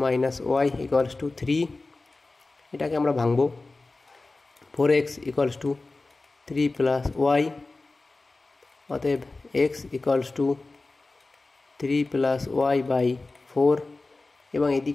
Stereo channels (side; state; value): right; quieter; 3.4 dB